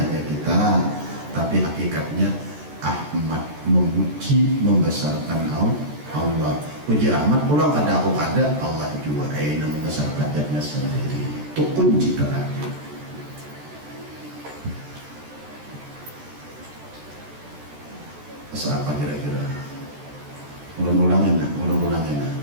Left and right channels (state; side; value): late; left; 14 ms